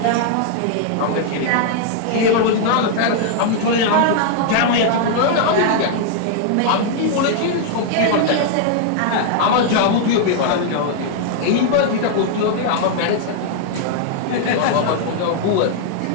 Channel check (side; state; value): both; different; correlation -0.01